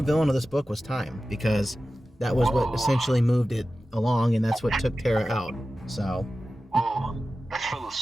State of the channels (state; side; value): normal; both; correlation 0.94